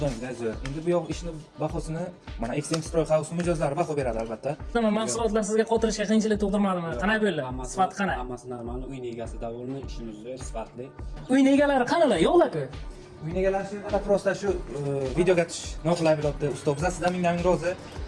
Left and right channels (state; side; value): identical; both; correlation 1.00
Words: zo'r. Endi bu yoq ishni bahosini mana XM Stroy House mijozlari baho beradi albatta. Nima mahsulotlar sizga qotirishga qiyinchilik tug'dirmadimi? Qanday bo'ldi? Sifati qanday? Hammasi normal, uy egasi davolmi, ishimiz zo'r, sifatli. Uy egalari qanalar? Yo'qlar-ku. Uy egalari shu prosta shu videoga tush noqulay bo'libdi. Usta biz sizdan ming rozi.